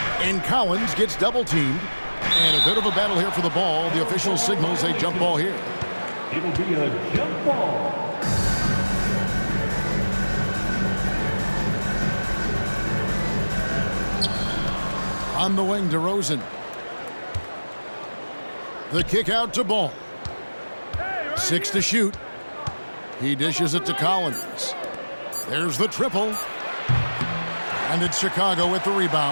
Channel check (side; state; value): both; inverted; correlation -1.00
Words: And Collins gets double-teamed. And a bit of a battle here for the ball. The official signals a jump ball here. It'll be a jump ball. On the wing, DeRozan. The kick out to Ball. 6 to shoot. He dishes it to Collins. There's the triple. And it's Chicago with the